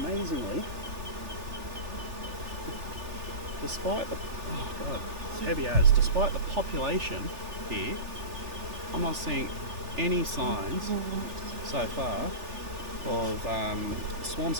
despite the it's heavy as, despite the population here, I'm not seeing any signs so far of swarm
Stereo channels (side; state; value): left; late; 3.4 ms